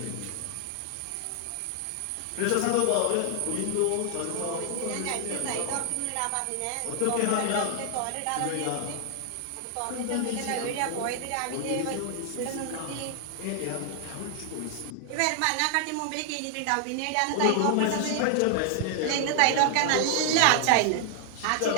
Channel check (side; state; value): both; different; correlation 0.00